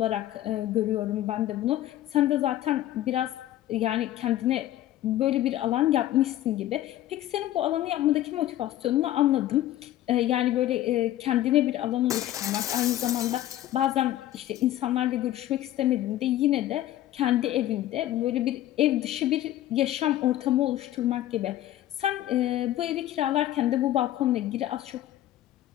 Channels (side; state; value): right; quieter; 13.7 dB